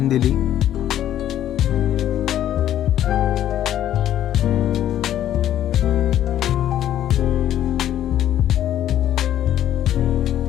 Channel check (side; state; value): right; quieter; 11.6 dB